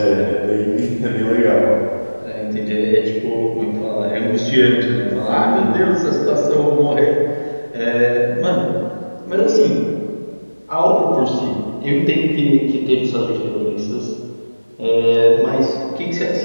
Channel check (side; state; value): both; inverted; correlation -1.00